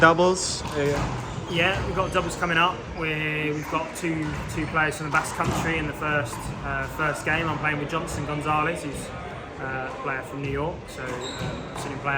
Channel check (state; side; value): identical; both; correlation 1.00